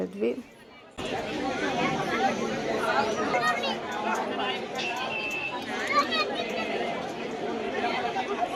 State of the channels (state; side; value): identical; both; correlation 1.00